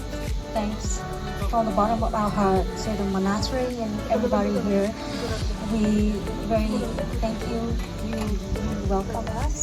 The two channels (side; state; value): both; identical; correlation 1.00